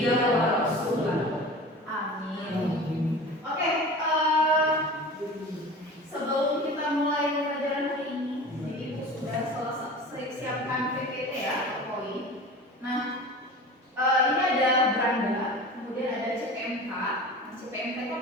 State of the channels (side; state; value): both; normal; correlation 0.36